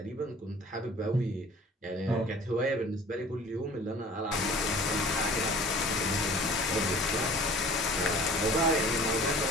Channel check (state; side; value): normal; both; correlation 0.47